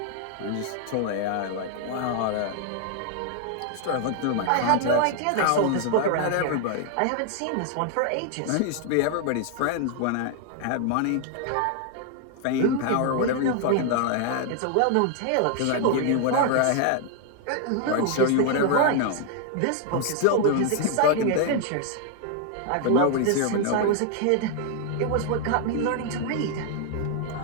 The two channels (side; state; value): both; different; correlation 0.00